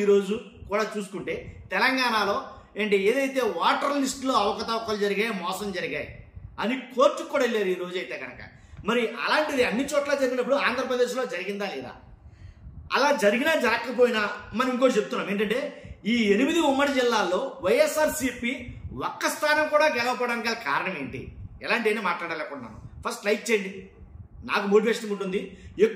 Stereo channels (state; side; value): identical; both; correlation 1.00